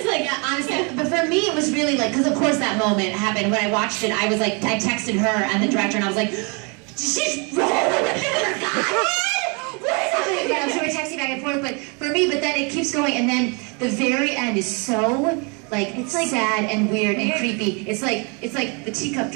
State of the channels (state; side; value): quieter; left; 33.0 dB